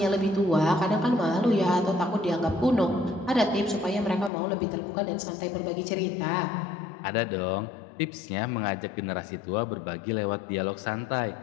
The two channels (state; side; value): drops out; right; at 4.3 s